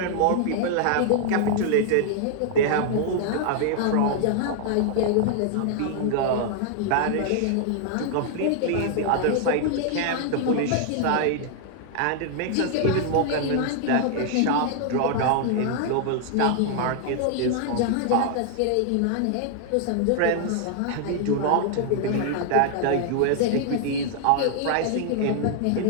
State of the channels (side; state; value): both; different; correlation 0.00